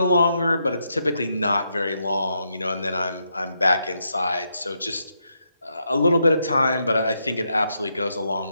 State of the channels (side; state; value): both; inverted; correlation -0.80